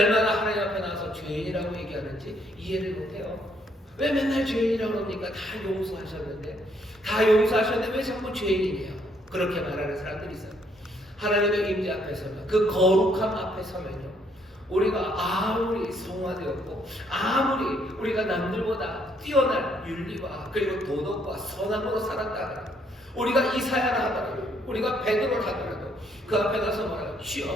하나님 앞에 나와서 죄인이라고 얘기하는지 이해를 못해요. 왜 맨날 죄인이라고 그럽니까? 다 용서하셨는데 왜 자꾸 죄인이에요? 그렇게 말하는 사람들이 있어요. 하나님의 임재 앞에 서면, 그 거룩함 앞에 서면요, 우리가 아무리 성화되었고 아무리 우리가 남들보다 뛰어난 윤리와 그리고 도덕과 선함으로 살았다, 우리가 이사야라 하더라도, 우리가 베드로라 하더라도 그 앞에 가서 뭐라고?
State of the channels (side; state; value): both; normal; correlation 0.69